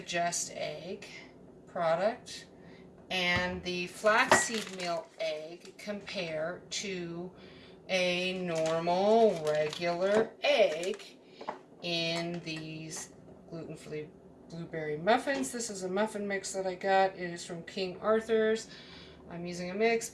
Just Egg product and the flaxseed meal egg compare to a normal regular egg in these gluten-free blueberry muffins. This is a muffin mix that I got. It is from King Arthur's. I'm using a mix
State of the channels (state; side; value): identical; both; correlation 1.00